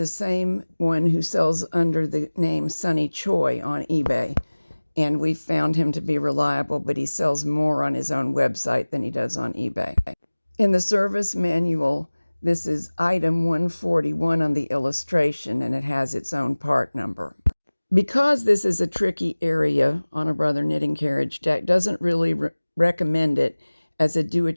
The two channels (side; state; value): both; inverted; correlation -1.00